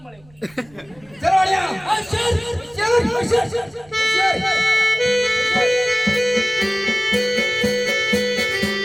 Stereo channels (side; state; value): right; noise; rumble, 28 dB below the sound